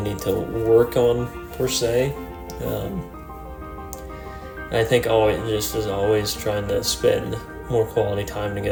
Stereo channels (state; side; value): identical; both; correlation 1.00